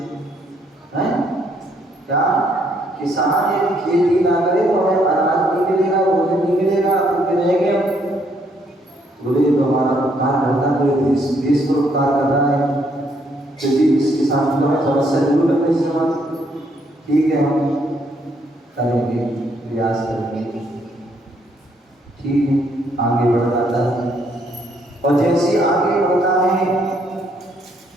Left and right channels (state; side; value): normal; both; correlation 0.70